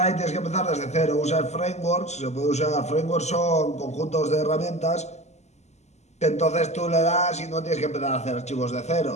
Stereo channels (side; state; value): right; late; 0.33 ms